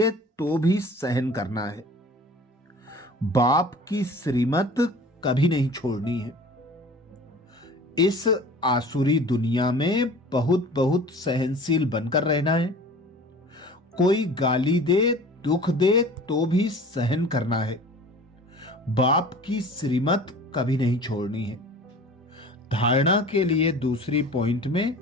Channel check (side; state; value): both; normal; correlation 0.43